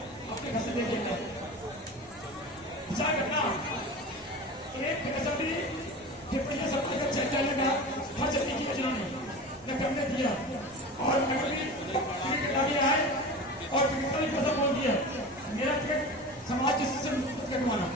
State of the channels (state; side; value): normal; both; correlation 0.32